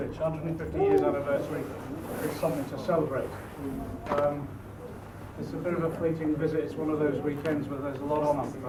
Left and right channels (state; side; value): identical; both; correlation 1.00